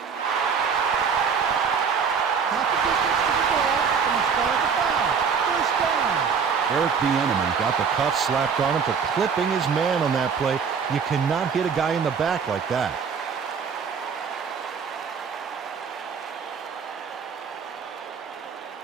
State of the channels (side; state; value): left; quieter; 6.3 dB